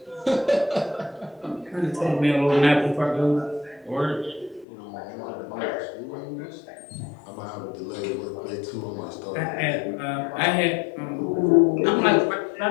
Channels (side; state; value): right; drops out; at 4.7 s